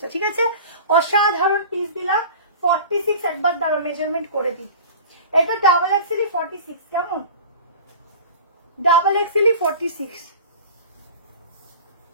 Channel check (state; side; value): inverted; both; correlation -0.39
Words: ঠিক আছে, অসাধারণ পিস দিলাম। 46 একবার দাঁড়ো মেজারমেন্ট করে দিই, এটা ডাবল এক্সেলি 46, কেমন, ডাবল এক্সেলি 46,